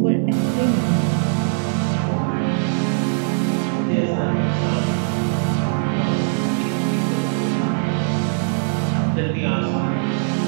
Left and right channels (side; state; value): left; silent; digital silence